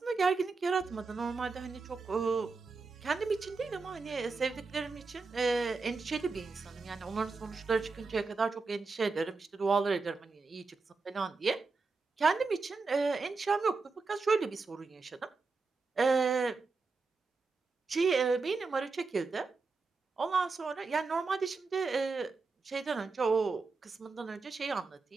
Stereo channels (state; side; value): quieter; left; 4.2 dB